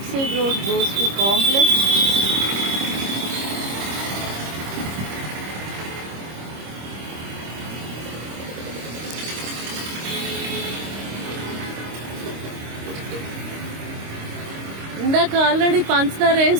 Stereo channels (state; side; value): late; left; 26 ms